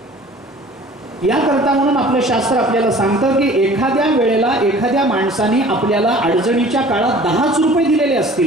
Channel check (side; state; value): both; normal; correlation 0.47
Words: याकरता म्हणून आपलं शास्त्र आपल्याला सांगतं की एखाद्या वेळेला एखाद्या माणसाने आपल्याला अडचणीच्या काळात 10 रुपये दिलेले